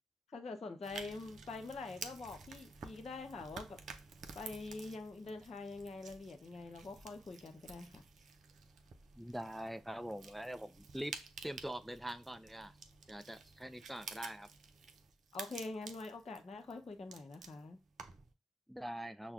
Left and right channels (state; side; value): normal; both; correlation 0.82